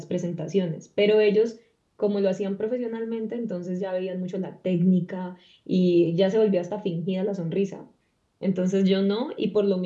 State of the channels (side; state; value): both; identical; correlation 1.00